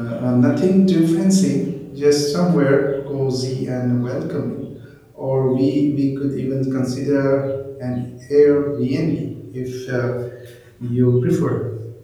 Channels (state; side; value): identical; both; correlation 1.00